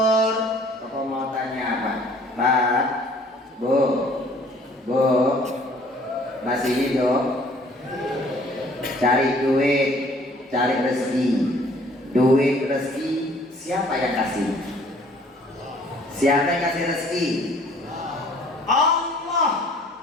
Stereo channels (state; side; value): normal; both; correlation 0.56